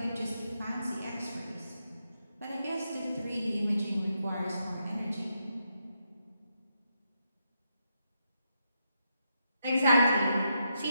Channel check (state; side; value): inverted; both; correlation -0.81